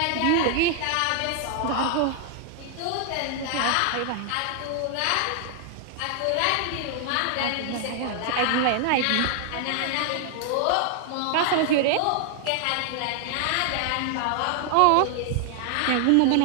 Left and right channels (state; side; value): different; both; correlation 0.00